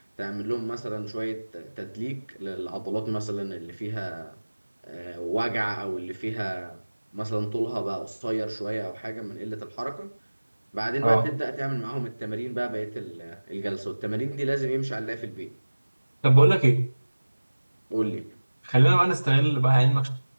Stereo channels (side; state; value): both; inverted; correlation -1.00